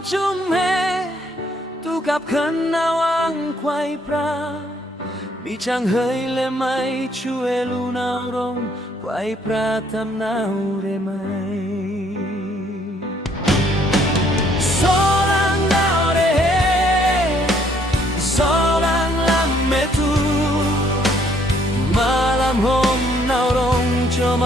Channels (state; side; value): normal; both; correlation 0.66